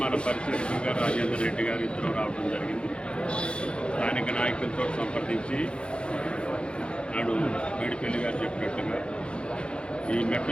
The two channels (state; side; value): late; right; 0.056 ms